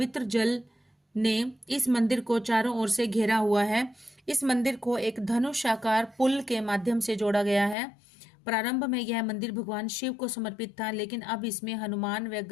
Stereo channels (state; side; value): drops out; right; at 7.8 s